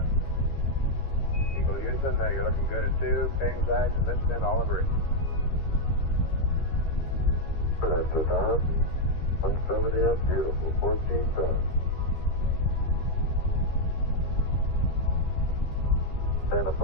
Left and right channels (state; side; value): late; right; 13 ms